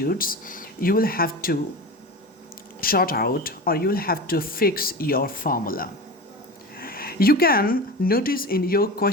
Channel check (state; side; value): normal; both; correlation 0.29